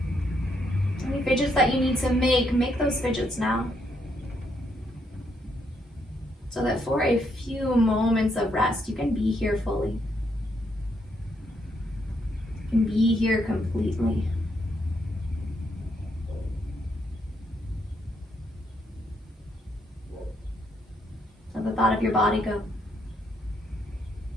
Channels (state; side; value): normal; both; correlation 0.75